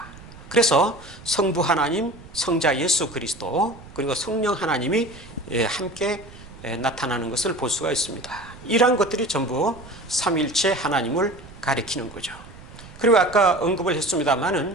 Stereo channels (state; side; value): noise; right; rumble, 19 dB below the sound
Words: 그래서 성부 하나님, 성자 예수 그리스도, 그리고 성령 하나님이 함께 나타나는 것을 볼 수가 있습니다. 이러한 것들이 전부 삼위일체 하나님을 가리키는 거죠. 그리고 아까 언급을